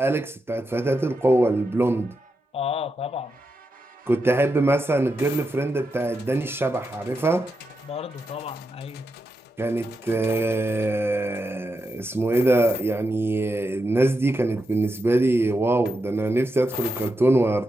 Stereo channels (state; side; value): normal; both; correlation 0.86